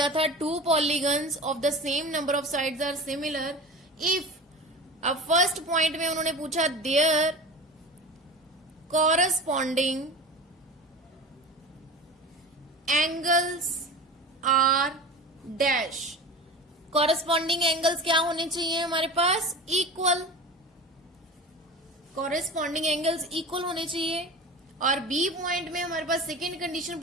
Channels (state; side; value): normal; both; correlation 0.33